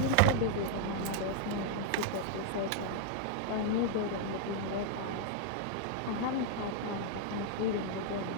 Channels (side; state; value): both; different; correlation 0.00